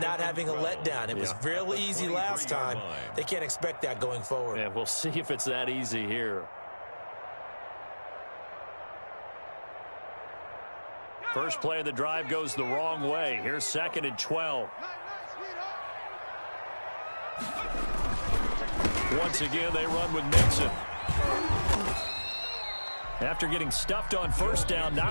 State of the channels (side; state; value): both; inverted; correlation -1.00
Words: having a letdown. It was real easy last time. They can't expect that going forward. Yeah, we'll see if it's that easy here. First play of the drive goes the wrong way. Here's 2nd and 12. Once again, they run with Mixon. After getting stuffed on first down,